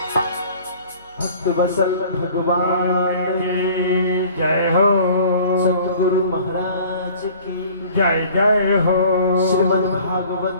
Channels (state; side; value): inverted; both; correlation -0.49